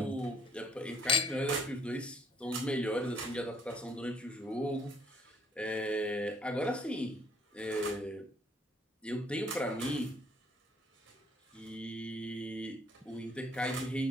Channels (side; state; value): both; normal; correlation 0.63